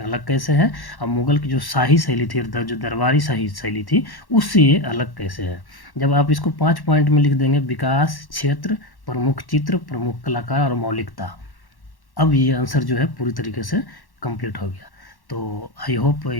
अलग कैसे है, और मुगल की जो शाही शैली थी, जो दरबारी शाही शैली थी, उससे ये अलग कैसे है। जब आप इसको 5 पॉइंट में लिख देंगे, विकास, क्षेत्र, प्रमुख चित्र, प्रमुख कलाकार और मौलिकता, अब ये आंसर जो है पूरी तरीके से कंप्लीट हो गया। तो आई होप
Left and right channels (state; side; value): late; right; 1.1 ms